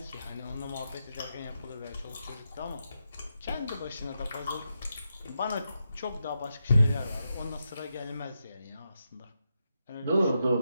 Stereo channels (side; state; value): both; inverted; correlation -0.86